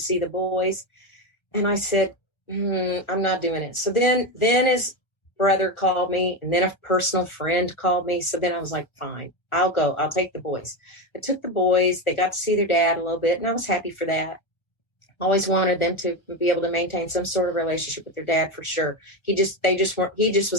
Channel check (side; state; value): right; late; 1.3 ms